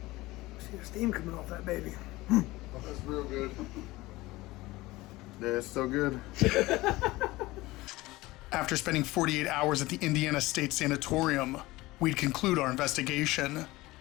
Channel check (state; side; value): quieter; right; 19.6 dB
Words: See the steam coming off that baby. That's real good. Yeah, it's so good. After spending 48 hours at the Indiana State Sanatorium, we'd conclude our investigation.